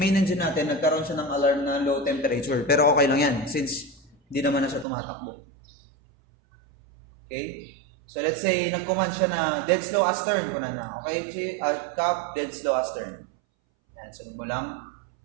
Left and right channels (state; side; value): drops out; left; at 4.9 s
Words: engine natin, nagkaroon siya ng alarm na low temperature. Pero okay lang yan, since hindi naman na siya tumatakbo. Okay? So, let's say, nag-command siya na dead slow astern. Okay? Cap, dead slow astern. Yan, sunod mo lang.